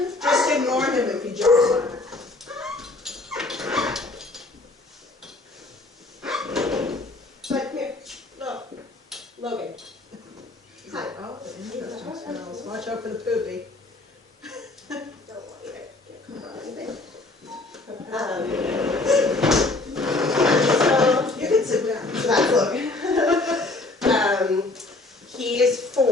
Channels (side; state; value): right; quieter; 3.1 dB